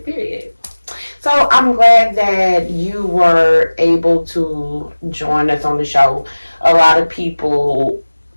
Period. So I'm glad that you were able to join us on the show. A lot of people,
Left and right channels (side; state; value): both; inverted; correlation -1.00